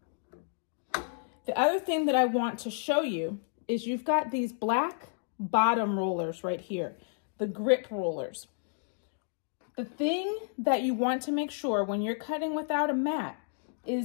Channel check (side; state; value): right; silent; digital silence